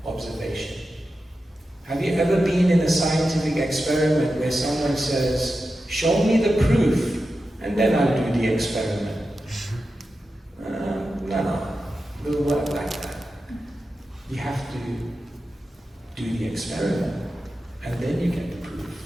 observation. Have you ever been in a scientific experiment where someone says, show me the proof, and then I'll do the experiment? No, it doesn't work like that. You have to do the experiment, and then you get the proof.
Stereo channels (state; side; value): normal; both; correlation 0.91